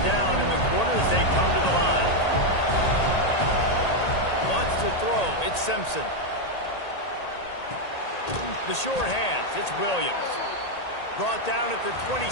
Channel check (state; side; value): late; right; 1.8 ms